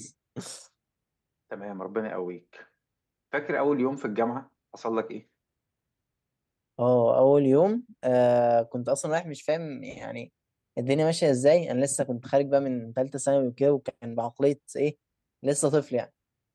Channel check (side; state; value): both; identical; correlation 1.00